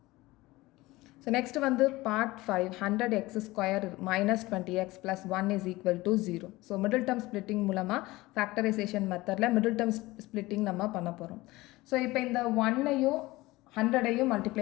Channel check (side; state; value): right; quieter; 19.7 dB